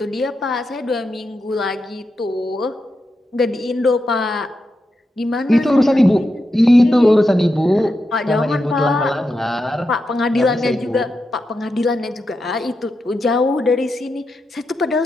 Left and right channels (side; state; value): both; normal; correlation 0.87